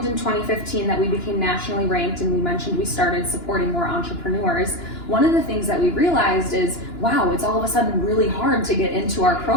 in 2015 that we became nationally ranked and we mentioned we started supporting more entrepreneurs, one of the things that we realized is, wow, it's all of a sudden really hard to get into our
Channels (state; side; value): late; right; 2.9 ms